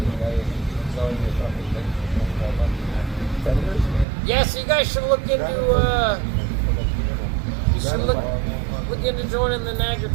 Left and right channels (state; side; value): drops out; left; at 4.0 s